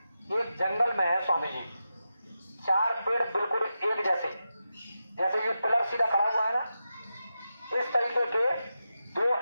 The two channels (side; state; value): both; inverted; correlation -0.90